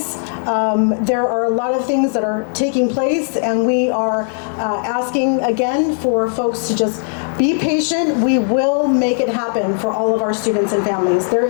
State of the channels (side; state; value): right; silent; 64 dB below the other